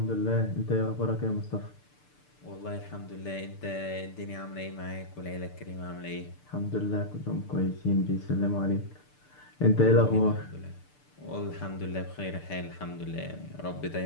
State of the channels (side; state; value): right; late; 6.8 ms